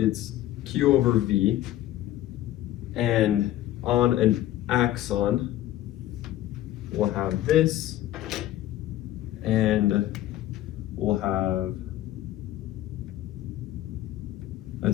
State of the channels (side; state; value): right; quieter; 13.9 dB